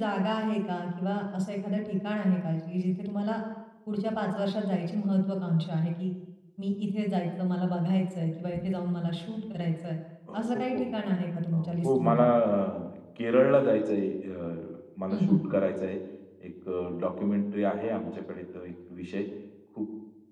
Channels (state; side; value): identical; both; correlation 1.00